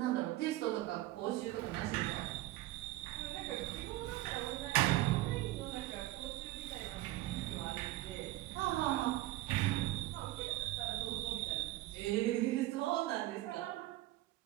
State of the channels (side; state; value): left; quieter; 16.9 dB